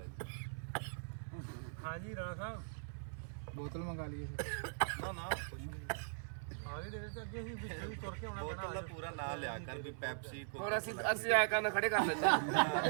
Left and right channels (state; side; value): silent; left; 51 dB below the other